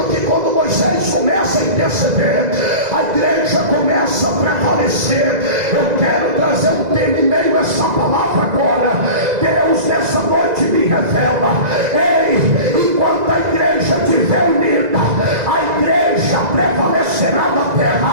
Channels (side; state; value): left; late; 2.0 ms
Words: que quando Moisés começa a interceder, a igreja começa a prevalecer. Eu quero trazer um tema em meio a essa palavra agora. Deus nessa noite me revela: enquanto a igreja estiver unida, a igreja prevalecerá na terra.